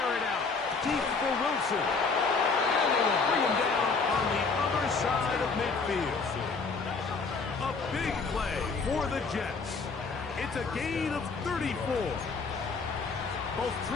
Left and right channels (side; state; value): right; quieter; 4.5 dB